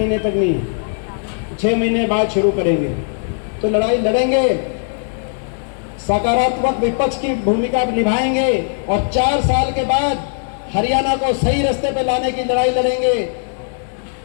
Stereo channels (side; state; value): right; silent; digital silence